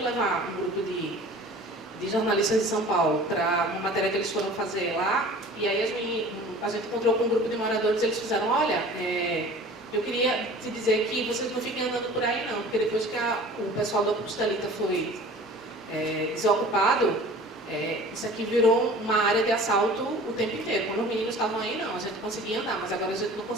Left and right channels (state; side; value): normal; both; correlation 0.44